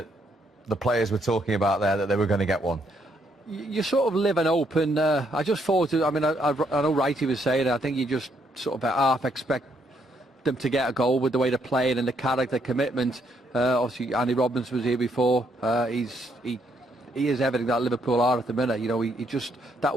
the players were talking about there, that they were going to get one? You sort of live and hope, and I just thought, I mean, I know Wright was saying it, I think you just sort of half expect them to get a goal with the way they're playing and the character commitment. Obviously, Andy Robbins was here before. He is everything that Liverpool are at the minute. You know, he just, that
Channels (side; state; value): both; normal; correlation 0.73